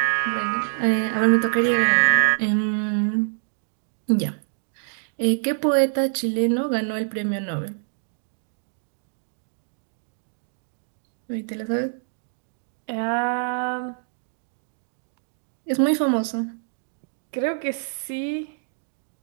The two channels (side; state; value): left; silent; digital silence